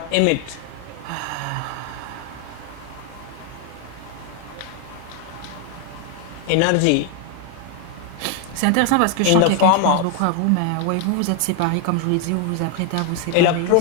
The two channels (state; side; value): different; both; correlation 0.01